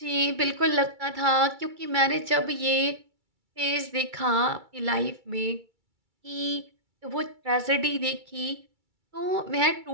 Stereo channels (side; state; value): left; late; 2.3 ms